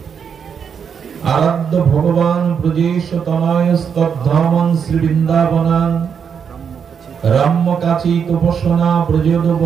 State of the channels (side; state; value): left; quieter; 7.0 dB